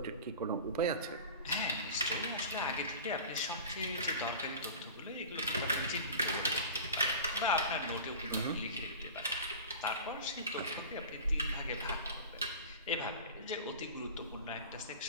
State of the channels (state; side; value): inverted; both; correlation -0.35